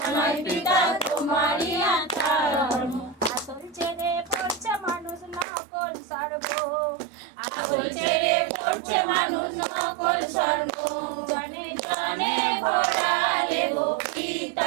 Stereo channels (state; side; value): drops out; left; at 5.5 s